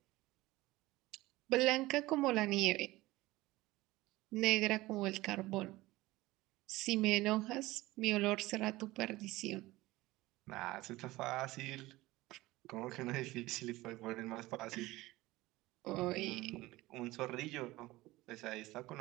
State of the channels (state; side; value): quieter; left; 18.9 dB